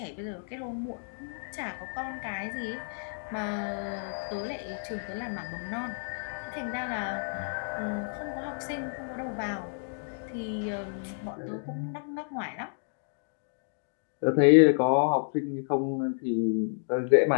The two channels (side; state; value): right; silent; digital silence